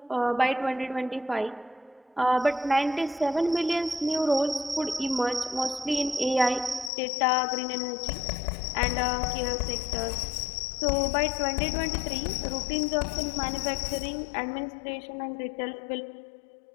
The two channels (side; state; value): right; drops out; at 6.9 s